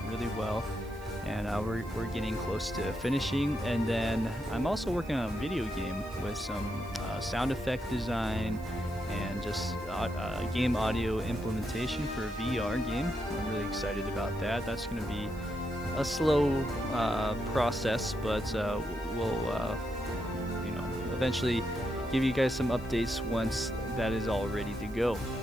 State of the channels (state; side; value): noise; right; hiss, 24 dB below the sound